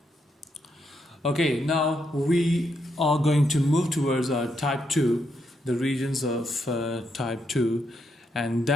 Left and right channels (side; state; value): both; normal; correlation 0.80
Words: Okay, now we are going to move towards our type 2, the regions of type 2, and